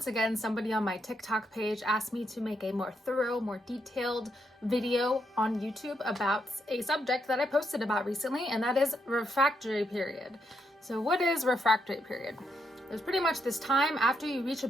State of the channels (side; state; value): both; normal; correlation 0.79